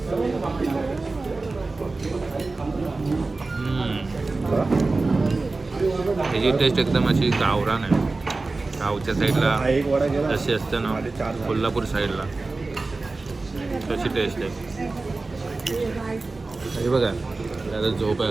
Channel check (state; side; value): quieter; left; 3.5 dB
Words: ह्याची टेस्ट एकदम अशी गावरान आहे. गावच्या साईडला हा एक वडा गेला जशी असते ना कोल्हापूर साईडला तशी टेस्ट आहे. हे बघा आता झोप